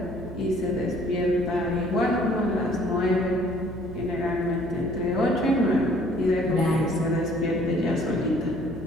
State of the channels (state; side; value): normal; both; correlation 0.58